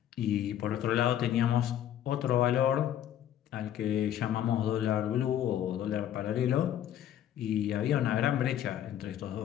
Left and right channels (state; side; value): quieter; right; 10.9 dB